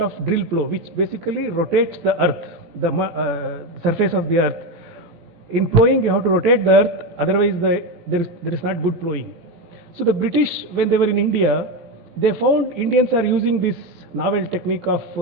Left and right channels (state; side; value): late; left; 17 ms